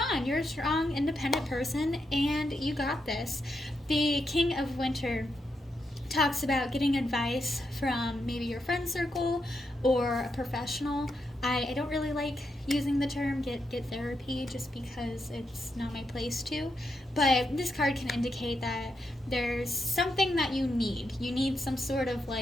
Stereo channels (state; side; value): normal; both; correlation 0.83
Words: on. You're a strong, independent person, and you got this. The King of Winter talks about getting advice from maybe your friend circle or a professional. I don't really like using the term get therapy just because it's not my place to, but this card can indicate that there's something that you need. You need some sort of